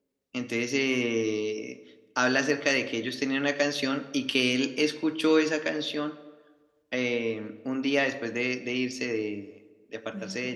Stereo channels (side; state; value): both; identical; correlation 1.00